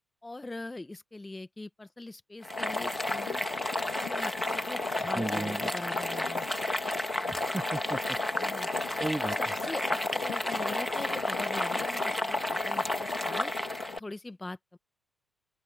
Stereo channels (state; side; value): normal; both; correlation 0.89